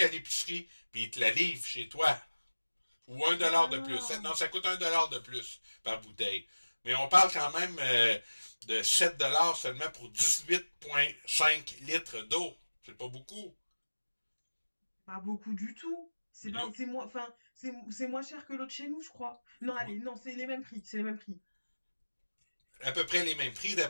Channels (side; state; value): both; inverted; correlation -1.00